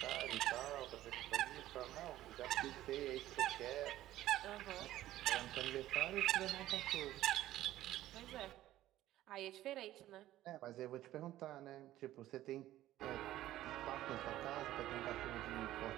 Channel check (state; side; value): quieter; left; 14.3 dB